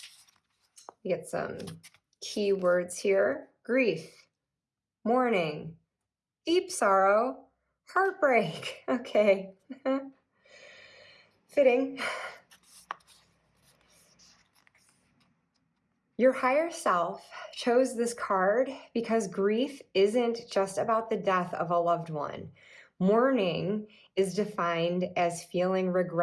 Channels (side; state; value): both; identical; correlation 1.00